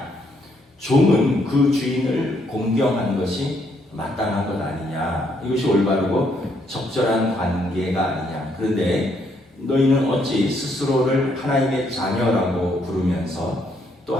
종은 그 주인을 공경하는 것이 마땅한 것 아니냐, 이것이 올바르고 적절한 관계가 아니냐. 그런데 너희는 어찌 스스로를 하나님의 자녀라고 부르면서 또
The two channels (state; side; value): normal; both; correlation 0.72